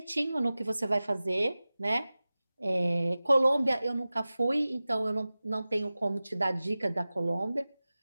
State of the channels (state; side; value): inverted; both; correlation -0.97